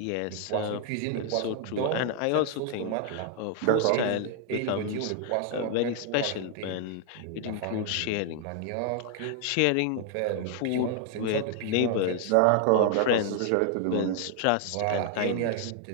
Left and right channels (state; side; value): different; both; correlation 0.00